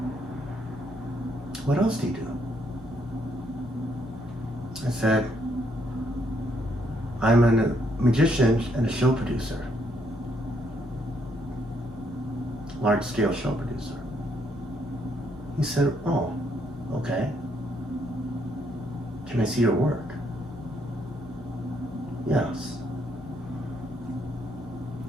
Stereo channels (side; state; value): both; normal; correlation 0.72